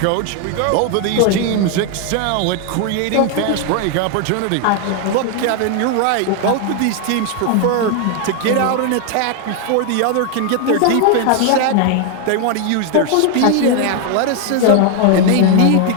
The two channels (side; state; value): both; different; correlation 0.00